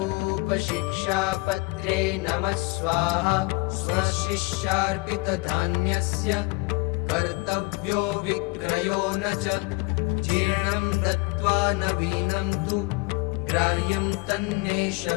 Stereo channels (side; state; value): right; quieter; 25.3 dB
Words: शिक्षापत्रे नमः स्वाहा। स्वशिष्यार्पितधान्यस्य कर्तव्यो विक्रयो न च जीर्णं दत्त्वा नवीनं तु ग्राह्यं तन्नेष